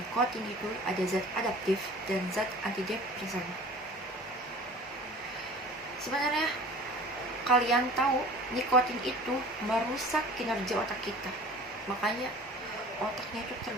itu ada zat adaptif dan zat antidepresan. Sebenarnya kalian tahu nikotin itu merusak kinerja otak kita, makanya otaknya itu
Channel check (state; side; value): normal; both; correlation 0.44